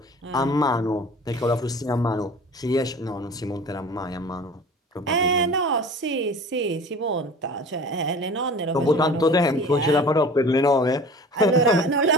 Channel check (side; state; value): both; normal; correlation 0.41